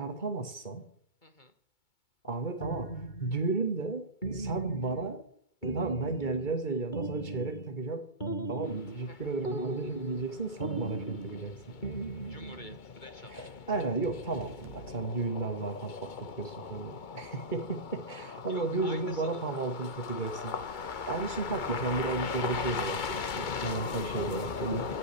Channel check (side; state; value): right; late; 2.2 ms